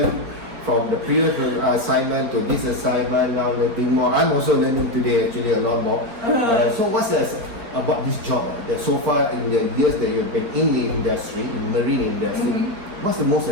from the previous assignment to this assignment, now learning more. I'm also learning today actually a lot more. So what's about this job that so far in the years that you've been in the industry, in marine industry, what's the most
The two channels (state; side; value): late; left; 4.4 ms